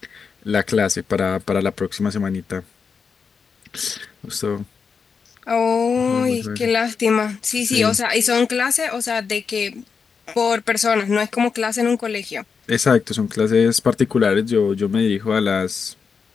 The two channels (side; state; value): right; quieter; 5.7 dB